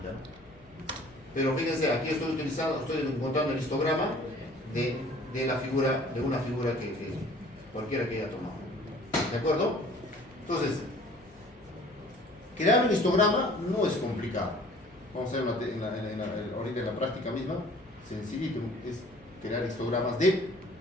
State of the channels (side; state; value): left; noise; hum, 28 dB below the sound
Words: ¿no? Pero fíjense, aquí estoy encontrando el histograma de una figura que cualquiera que haya tomado. ¿De acuerdo? Entonces, crear un histograma no es complicado. Vamos a ver ahorita en la práctica misma, sencillito, es crear histogramas de